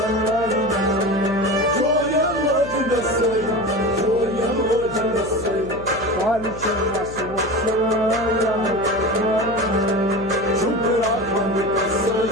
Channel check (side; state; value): left; noise; hum, 14 dB below the sound